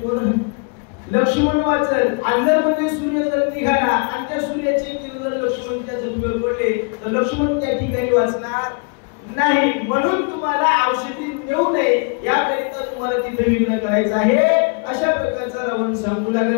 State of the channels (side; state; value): right; quieter; 37.5 dB